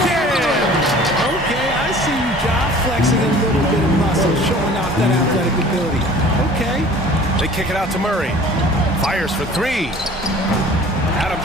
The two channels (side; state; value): both; normal; correlation 0.47